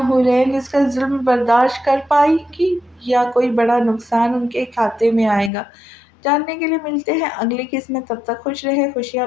اس کا ظلم برداشت کر پائیں گی یا کوئی بڑا نقصان ان کے کھاتے میں آئے گا؟ جاننے کے لیے ملتے ہیں اگلی قسط میں۔ تب تک خوش رہیں، خوشیاں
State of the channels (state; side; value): drops out; right; at 5.5 s